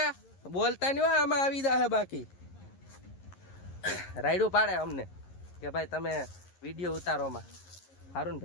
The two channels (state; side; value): late; right; 11 ms